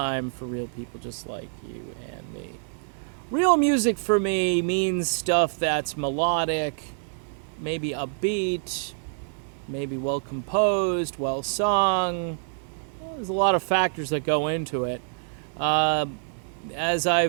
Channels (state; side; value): silent; left; 58 dB below the other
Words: for real people just like you and me. Real music for me means stuff that's melodic, maybe upbeat, maybe well composed, well sung. Well, there's a lot of factors that go into it. As